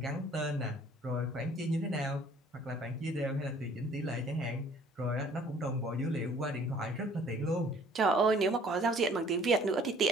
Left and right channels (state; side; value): normal; both; correlation 0.55